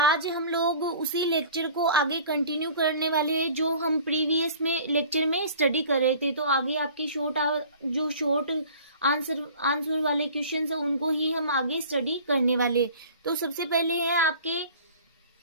हम लोग उसी लेक्चर को आगे कंटिन्यू करने वाले हैं जो हम प्रीवियस में लेक्चर में स्टडी कर रहे थे। तो आगे आपकी शॉर्ट आंसर वाले क्वेश्चंस हैं उनको ही हम आगे स्टडी करने वाले। तो सबसे पहले है आपके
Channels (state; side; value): inverted; both; correlation -0.46